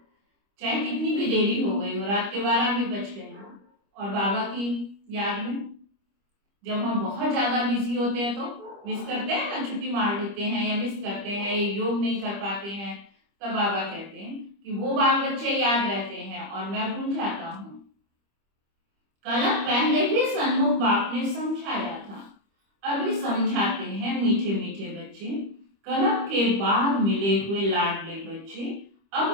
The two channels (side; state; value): left; late; 25 ms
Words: चाहे कितनी भी देरी हो गई हो, रात के 12 भी बज गए हो। और बाबा की याद में जब हम बहुत ज्यादा बिजी होते हैं तो मिस करते हैं ना, छुट्टी मार लेते हैं या मिस करते हैं, योग नहीं कर पाते हैं, तब बाबा कहते हैं कि वो बाल बच्चे याद रहते हैं और मैं भूल जाता हूँ। कलम पहले भी सन्मुख बाप ने समझाया था, अभी समझाते हैं मीठे मीठे बच्चे। कलम के बाद मिले हुए लाडले बच्चे,